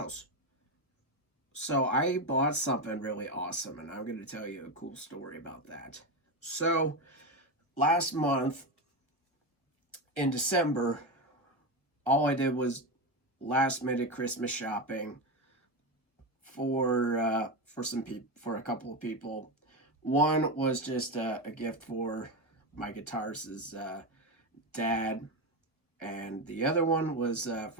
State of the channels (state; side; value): late; right; 1.2 ms